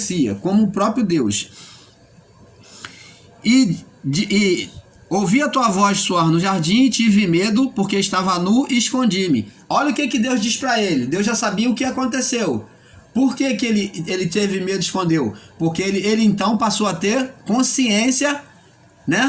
como o próprio Deus. E ouvi a tua voz soar no jardim e tive medo porque estava nu e escondi-me. Olha o que Deus diz para ele. Deus já sabia o que aconteceu. Por que ele teve medo e escondeu? Porque ele então passou a ter consciência,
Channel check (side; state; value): both; identical; correlation 1.00